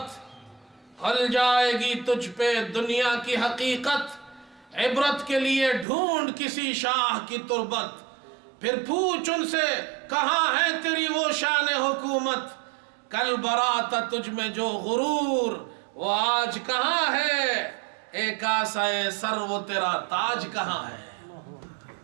کھل جائے گی تجھ پہ دنیا کی حقیقت۔ عبرت کے لیے ڈھونڈ کسی شاہ کی تربت، پھر پوچھ ان سے کہاں ہے تیری وہ شان حکومت۔ کل برات تجھ میں جو غرور، وہ آج کہاں ہے؟ ایک آسائے سر وہ تیرا تاج کہاں ہے؟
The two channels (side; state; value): left; drops out; at 5.9 s